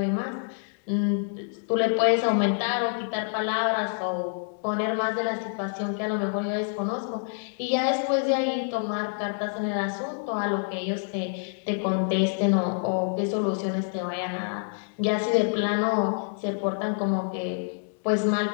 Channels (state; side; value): silent; right; digital silence